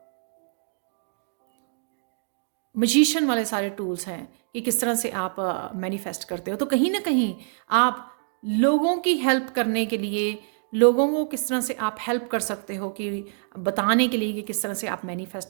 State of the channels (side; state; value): left; silent; digital silence